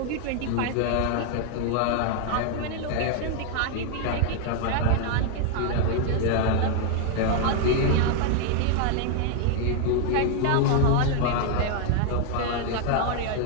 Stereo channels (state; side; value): different; both; correlation 0.00